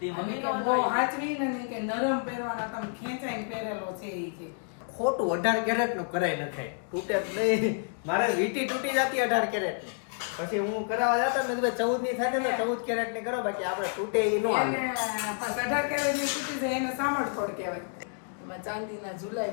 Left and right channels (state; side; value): silent; right; 57 dB below the other